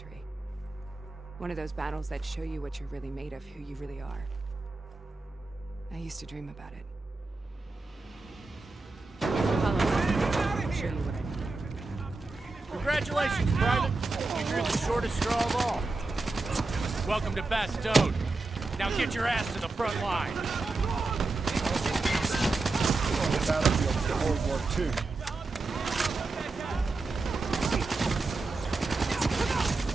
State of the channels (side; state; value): left; quieter; 3.5 dB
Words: One of those battles that show you what you're really made of, who you really are. I used to dream about it. show you what I mean. Congratulations, Private. You drew the shortest straw of all. Welcome to Bastogne. Now get your ass to the front line. On the battlefield of World War II.